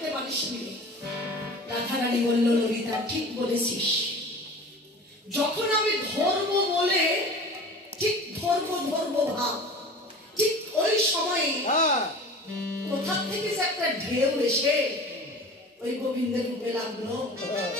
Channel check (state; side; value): normal; both; correlation 0.39